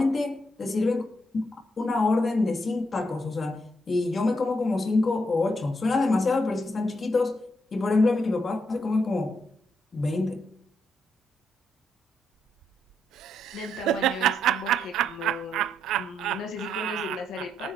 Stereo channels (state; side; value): normal; both; correlation 0.79